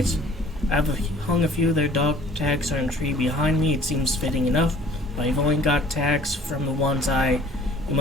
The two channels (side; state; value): both; normal; correlation 0.53